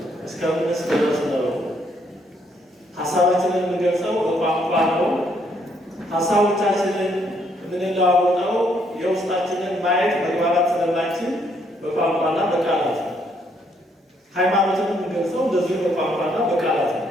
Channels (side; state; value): both; normal; correlation 0.71